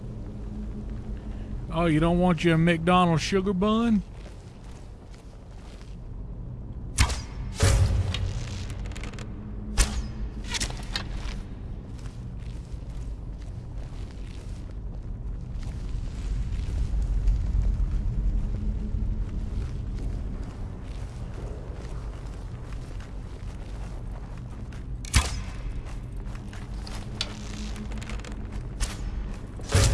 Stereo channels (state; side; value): identical; both; correlation 1.00